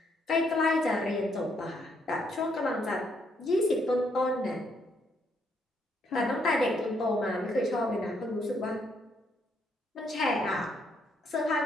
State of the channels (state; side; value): normal; both; correlation 0.73